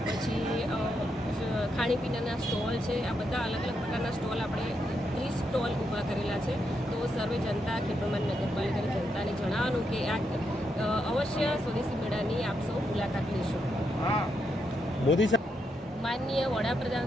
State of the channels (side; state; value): both; normal; correlation 0.81